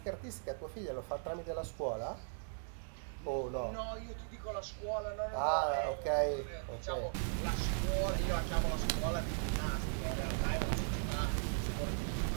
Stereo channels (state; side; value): silent; left; digital silence